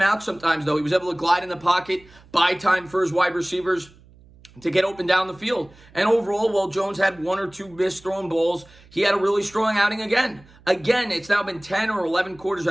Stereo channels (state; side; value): noise; right; hum, 26 dB below the sound